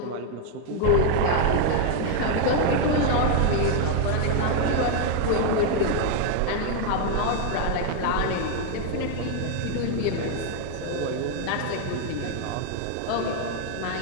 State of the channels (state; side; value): different; both; correlation 0.01